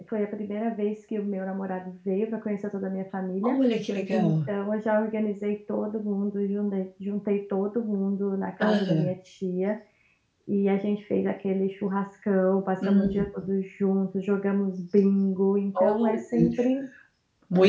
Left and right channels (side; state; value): both; identical; correlation 1.00